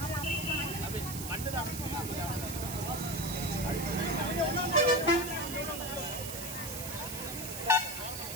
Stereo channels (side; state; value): right; noise; hiss, 7 dB below the sound